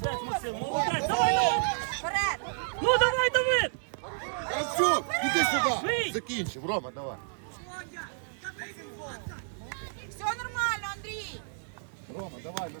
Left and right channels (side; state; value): left; silent; digital silence